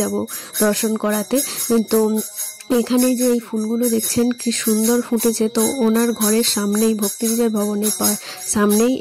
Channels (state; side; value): identical; both; correlation 1.00